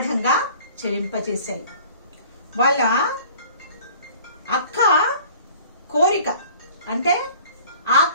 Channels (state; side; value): inverted; both; correlation -0.48